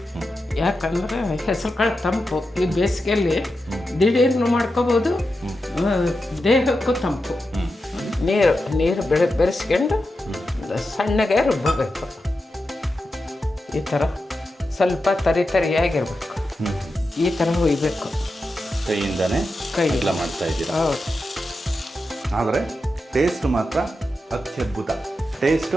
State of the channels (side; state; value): both; normal; correlation 0.89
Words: ಯಾಕಂದರೆ ಹೆಸರು ಕಾಳು ತಂಪು, ಈ ಬೇಸಿಗೆಯಲ್ಲಿ ದಿಢೀರ್ನು ಮಾಡ್ಕೋಬೋದು, ದೇಹಕ್ಕೂ ತಂಪು. ನೀರು ಬೆರೆಸ್ಕೊಂಡು ಸಣ್ಣಗೆ ರುಬ್ಬಬೇಕು. ಈ ಥರ ಸ್ವಲ್ಪ ತರಿಯಾಗಿರ್ಬೇಕು, ಈ ಥರ ಹುಯ್ಬೇಕು. ಕೈಯಿಂದನೇ ಎಲ್ಲ ಮಾಡ್ತಾ ಇದ್ದೀರಾ? ಹೌದು. ಆದರೆ ಟೇಸ್ಟ್ ಮಾತ್ರ ಅತ್ಯದ್ಭುತ.